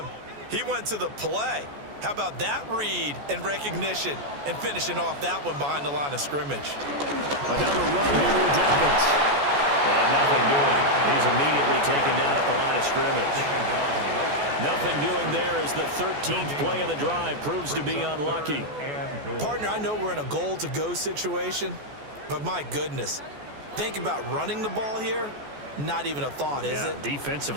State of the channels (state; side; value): late; left; 14 ms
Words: He went to the play. How about that read and recognition and finishing off that one behind the line of scrimmage? Another run here with Dobbins. And nothing doing. He's immediately taken down at the line of scrimmage. Nothing doing there as the 13th play of the drive proves to be unlucky. Partner, I know we're in a goal-to-go situation, but my goodness, think about running the ball here. Not even a thought, is it?